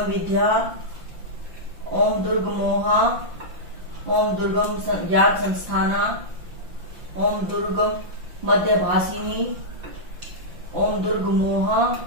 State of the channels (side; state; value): left; late; 5.9 ms